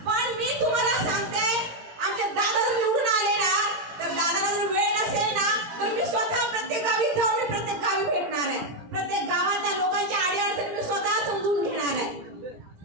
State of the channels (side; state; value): left; late; 17 ms